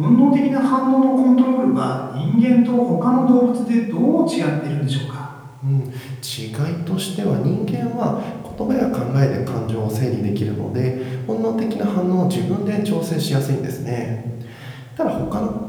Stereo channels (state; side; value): identical; both; correlation 1.00